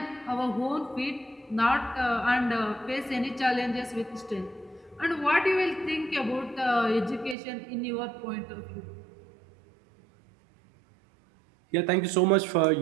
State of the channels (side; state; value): left; drops out; at 7.4 s